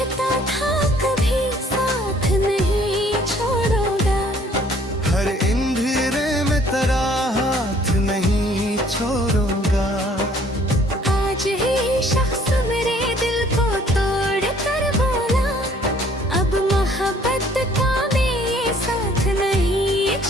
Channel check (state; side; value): normal; both; correlation 0.59